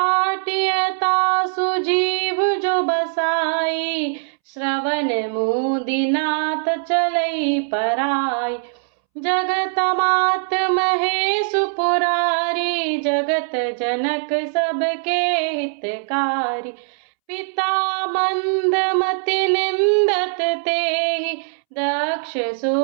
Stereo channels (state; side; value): silent; left; 65 dB below the other